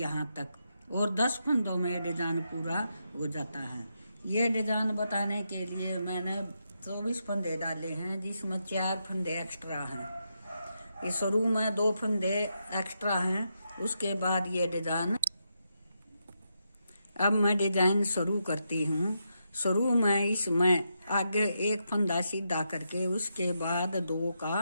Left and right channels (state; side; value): inverted; both; correlation -0.83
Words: तक, और 10 फंदों में डिजाइन पूरा हो जाता है। ये डिजाइन बताने के लिए मैंने 24 फंदे डाले हैं, जिसमें 4 फंदे एक्स्ट्रा हैं। ये शुरू में 2 फंदे एक्स्ट्रा हैं, उसके बाद ये डिजाइन। अब मैं डिजाइन शुरू करती हूँ। शुरू में इसमें आगे एक फंदा सीधा करके उसके बाद 2